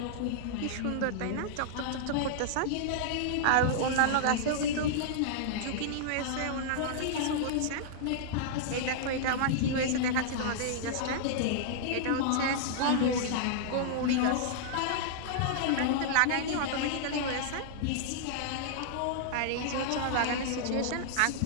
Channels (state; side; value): different; both; correlation -0.01